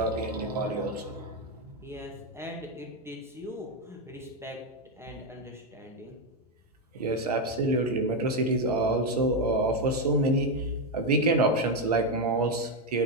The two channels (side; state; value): both; normal; correlation 0.06